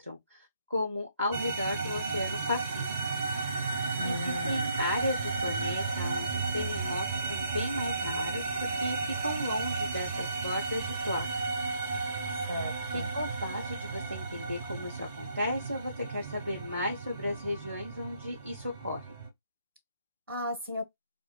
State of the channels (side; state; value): both; inverted; correlation -0.70